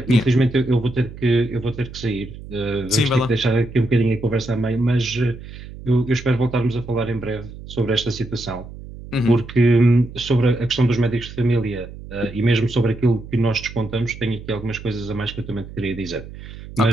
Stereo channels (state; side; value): noise; right; hum, 14 dB below the sound